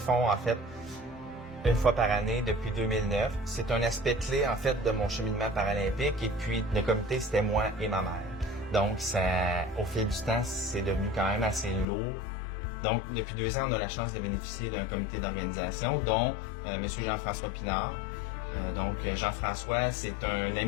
en fait, une fois par année depuis 2009. C'est un aspect clé, en fait, de mon cheminement paralympique. Et puis, le comité, c'était moi et ma mère. Donc, au fil du temps, c'est devenu quand même assez lourd. Donc, depuis 2 ans, on a la chance de bénéficier d'un comité d'organisation, dont M. Jean-François Pinard. Donc, Jean-François, c'est un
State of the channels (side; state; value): right; drops out; at 11.9 s